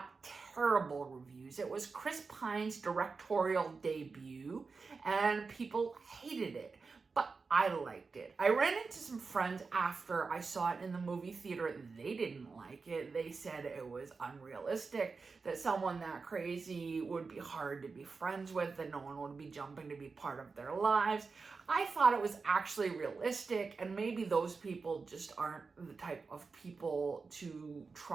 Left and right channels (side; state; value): left; quieter; 4.5 dB